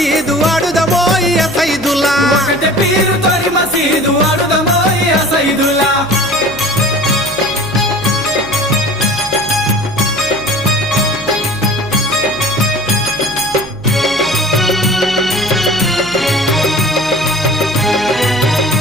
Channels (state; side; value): noise; right; hum, 17 dB below the sound